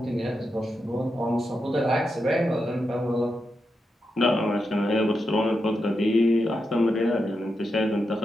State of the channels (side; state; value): both; normal; correlation 0.86